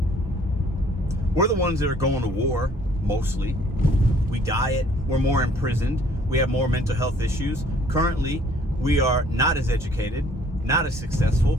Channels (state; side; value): normal; both; correlation 0.59